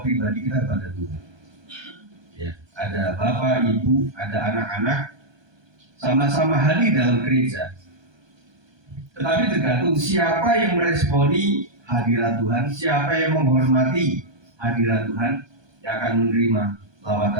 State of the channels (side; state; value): left; late; 1.2 ms